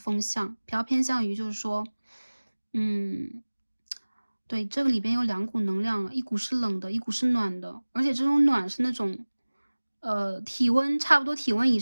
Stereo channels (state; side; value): inverted; both; correlation -1.00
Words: 象，比较偏向于就是说对，这个里边有2股能量了，一股是冷的，一股是暖的，而且这种暖是那种，体温差不多体温以